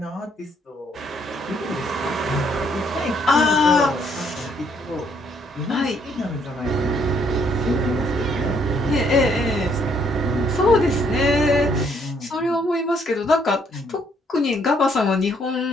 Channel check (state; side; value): normal; both; correlation 0.68